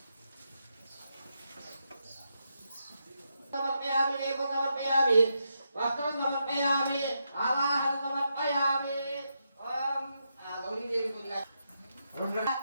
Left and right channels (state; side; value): inverted; both; correlation -0.83